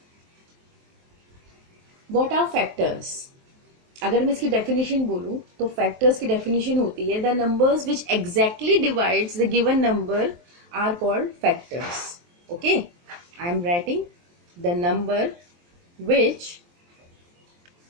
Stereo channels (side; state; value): left; late; 23 ms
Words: What are factors? अगर मैं इसकी definition बोलूं तो factors की definition होती है the numbers which exactly divides the given number are called factors. Okay, I am writing the number which